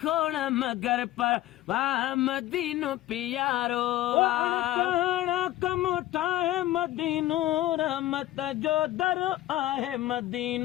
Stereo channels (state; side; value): quieter; right; 15.2 dB